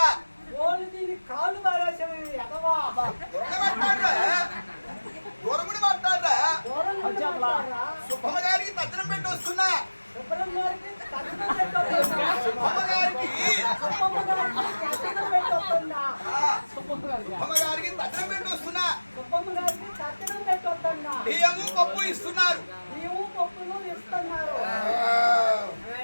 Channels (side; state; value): both; inverted; correlation -1.00